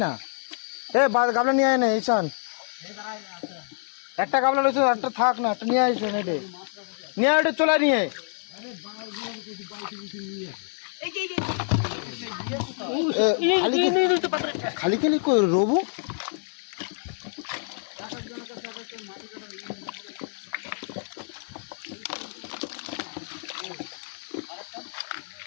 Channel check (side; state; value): right; silent; 60 dB below the other